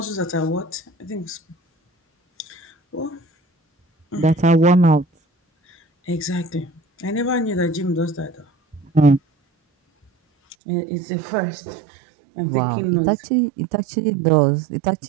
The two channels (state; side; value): drops out; left; at 10.6 s